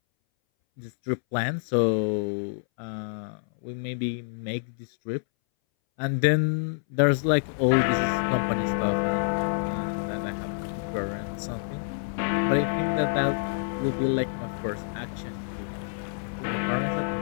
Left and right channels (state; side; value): silent; right; 60 dB below the other